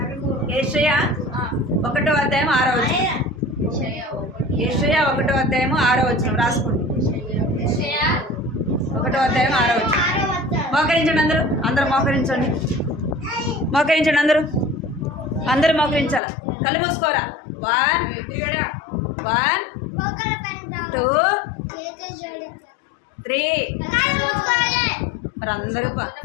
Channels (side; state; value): right; drops out; at 16.2 s